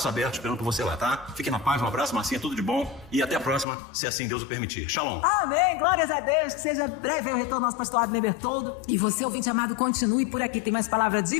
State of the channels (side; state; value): right; drops out; at 3.7 s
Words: abertos esperando por você lá, tá? Fique na paz, um abraço, Marcinha, tudo de bom. E até a próxima, se assim Deus o permitir. Shalom! Amém, glórias a Deus, que seja breve o retorno do nosso pastor Abner Bertoldo. E você, ouvinte amado, continue por aqui, tem mais palavra de